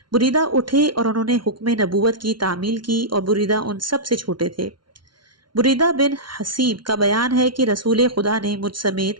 بریدہ اٹھے اور انہوں نے حکم نبوت کی تعمیل کی، اور بریدہ ان سب سے چھوٹے تھے۔ بریدہ بن حسیب کا بیان ہے کہ رسول خدا نے مجھ سمیت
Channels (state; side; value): late; left; 0.73 ms